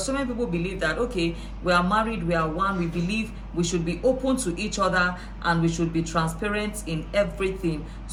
so many people believe that, okay, we are married, we are one, we believe we should be open to each other and we should be transparent in everything.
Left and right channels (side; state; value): both; identical; correlation 1.00